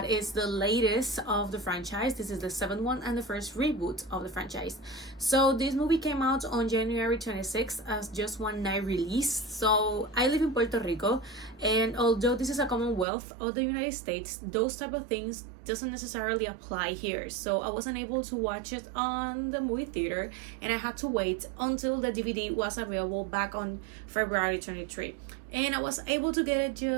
is the latest of the franchise. This is the 7th one and the first reboot of the franchise. So this movie came out on January 26th as just one night release. So I live in Puerto Rico, and although this is a Commonwealth of the United States, those type of things doesn't necessarily apply here. So I wasn't able to watch it on the movie theater, and I had to wait until the DVD was available back on February 23, and I was able to get it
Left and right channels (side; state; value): left; drops out; at 13.1 s